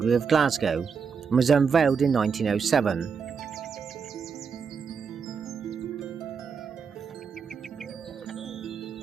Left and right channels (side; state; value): left; quieter; 6.0 dB